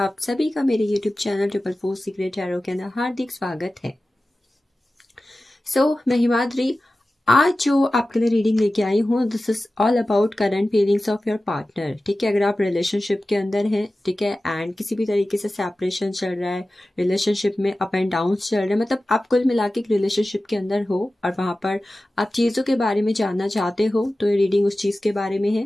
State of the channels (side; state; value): both; normal; correlation 0.95